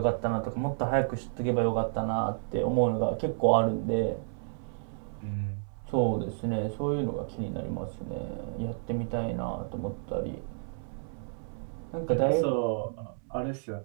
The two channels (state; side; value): silent; left; 57 dB below the other